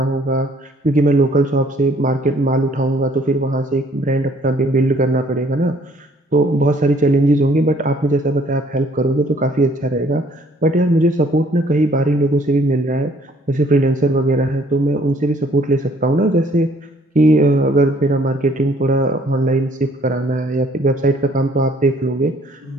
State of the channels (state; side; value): normal; both; correlation 0.61